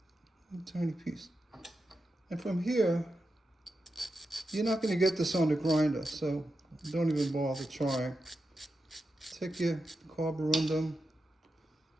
A tiny piece. And from here, you're not going to get this on the grinder, so don't even bother trying. Take your carborundum,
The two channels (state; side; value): normal; both; correlation 0.89